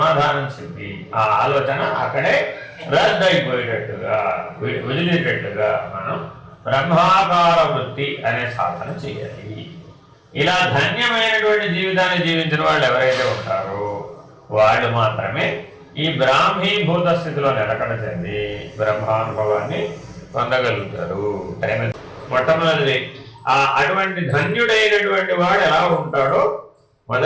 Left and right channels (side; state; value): both; identical; correlation 1.00